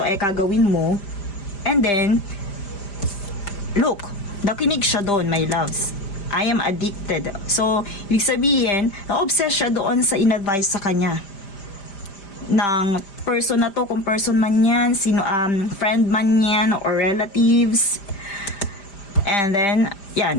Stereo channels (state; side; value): late; right; 5.0 ms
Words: ay kagawin mo. And then, look, nakinig siya doon, my loves. I am addicted. So, ibig sabihin, na-obsess siya doon sa in-advise sa kanya ng person na to, kung person man yan, friend man yan, or relatives. And then,